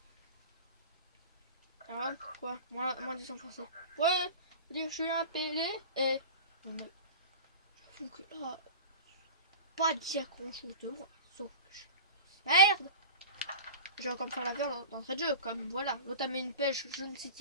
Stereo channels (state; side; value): inverted; both; correlation -0.34